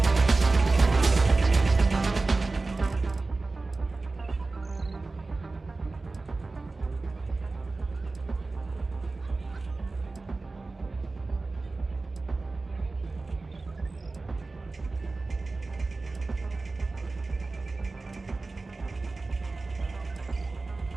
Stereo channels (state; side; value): quieter; left; 3.5 dB